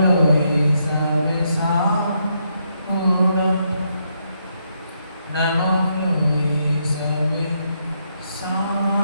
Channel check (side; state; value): both; inverted; correlation -0.78